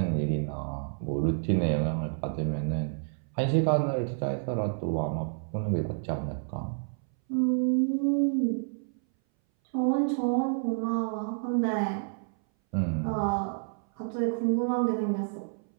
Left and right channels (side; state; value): left; silent; 58 dB below the other